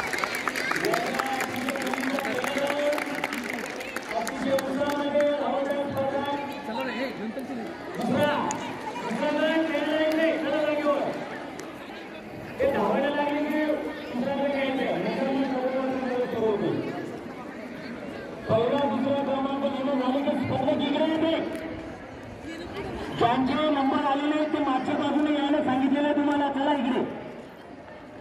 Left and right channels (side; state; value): both; identical; correlation 1.00